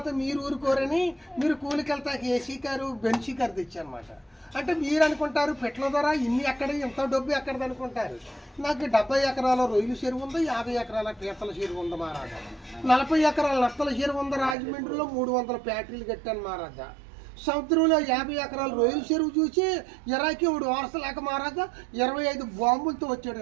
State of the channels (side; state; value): left; drops out; at 14.6 s